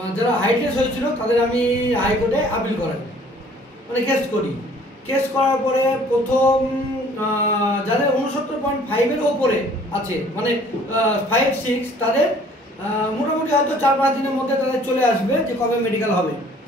যারা হাইটলেস হয়েছিল তাদের আমি হাইকোর্টে আপিল করাই, মানে কেস করার পরে প্রথম যাদের 69.5-এর ওপরে আছে, মানে 5-6, তাদের মোটামুটি হয়তো 4-5 দিনের মধ্যে তাদের চলে আসবে যে কবে মেডিকেল হবে,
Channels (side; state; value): both; normal; correlation 0.55